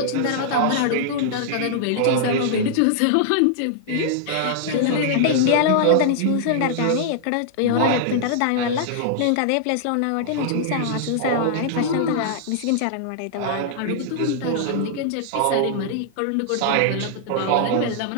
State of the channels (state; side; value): different; both; correlation -0.01